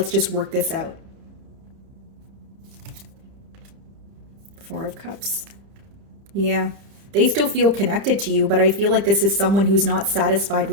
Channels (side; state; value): left; late; 30 ms